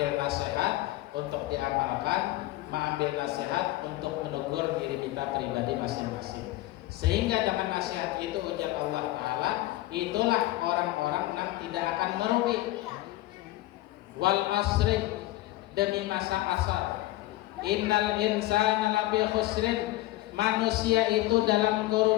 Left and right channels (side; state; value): right; quieter; 17.2 dB